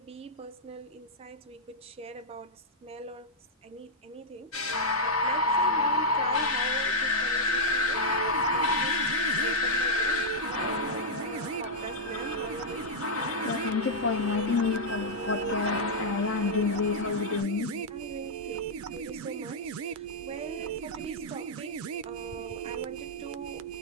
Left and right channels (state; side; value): normal; both; correlation -0.06